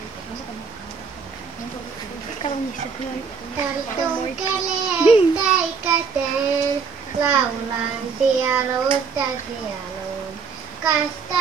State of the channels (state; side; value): quieter; left; 5.6 dB